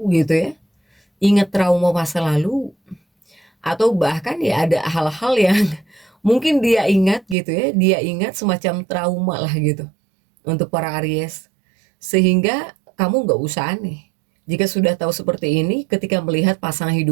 gitu ya, ingat trauma masa lalu, atau bahkan ya ada hal-hal yang mungkin dia ingat gitu ya, dia ingat semacam trauma lah gitu untuk para Aries, sehingga kamu nggak usah aneh jika sudah tahu seperti ini ketika melihat pasangan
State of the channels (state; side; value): drops out; left; at 7.4 s